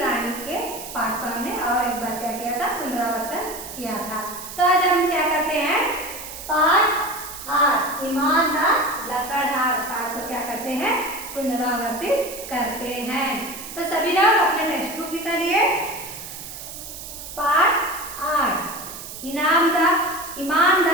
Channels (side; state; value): right; noise; hiss, 11 dB below the sound